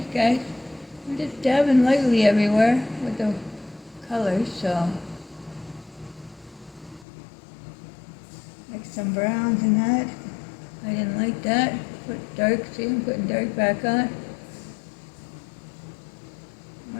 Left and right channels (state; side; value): drops out; right; at 7.1 s